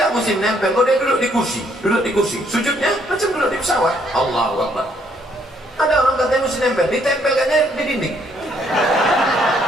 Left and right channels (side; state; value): both; normal; correlation 0.68